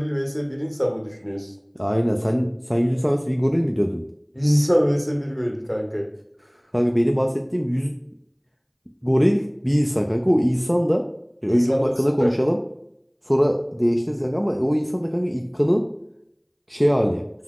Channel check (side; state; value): both; identical; correlation 1.00